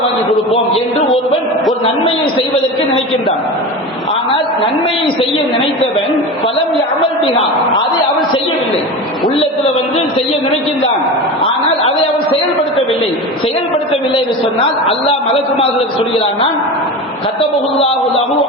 வாங்கி கொடுப்போம் என்று ஒருவன் ஒரு நன்மையை செய்வதற்கு நினைக்கின்றான். ஆனால் நன்மையை செய்ய நினைத்தவன் பலம் யஅமல் பிஹா, அதை அவன் செய்யவில்லை. உள்ளத்துல செய்ய நினைக்கின்றான், ஆனால் அதை அவன் செயல்படுத்தவில்லை. செயல்படுத்தவில்லை என்று சொன்னால் அல்லாஹ் மலக்குமார்களுக்கு சொல்கிறான், கத்தபஹுல்லாஹு லஹு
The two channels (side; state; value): both; normal; correlation 0.28